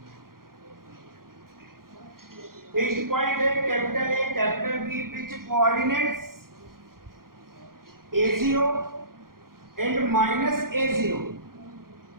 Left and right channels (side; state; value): left; late; 0.92 ms